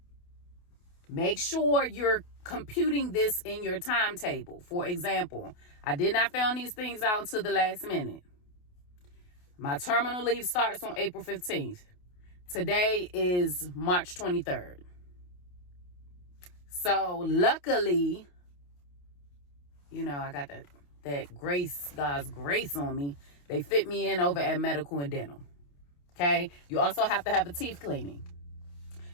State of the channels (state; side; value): late; right; 28 ms